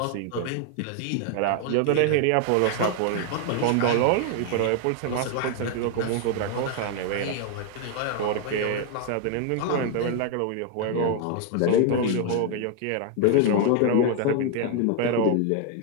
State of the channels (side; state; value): both; different; correlation 0.00